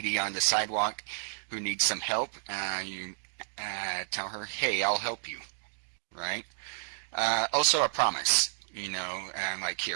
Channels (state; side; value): silent; left; digital silence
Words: on the sidewalk who needs some help. You tell her, hey, I'll help you, right? Also a promise, like